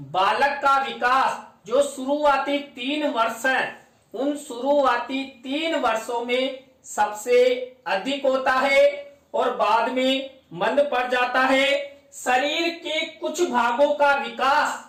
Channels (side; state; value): both; identical; correlation 1.00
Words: बालक का विकास जो शुरुआती 3 वर्ष है, उन शुरुआती 3 वर्षों में सबसे अधिक होता है और बाद में मंद पड़ जाता है। शरीर के कुछ भागों का विकास